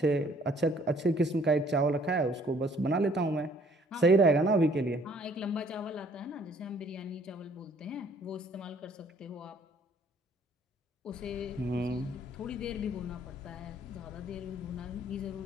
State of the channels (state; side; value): normal; both; correlation 0.60